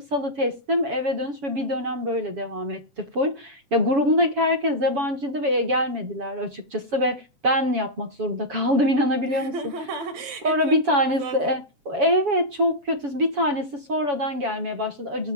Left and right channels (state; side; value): late; left; 7.5 ms